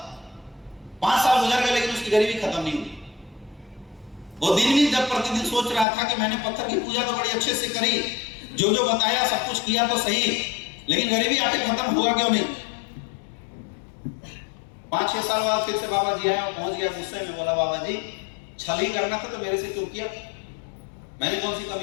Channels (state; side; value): drops out; right; at 5.9 s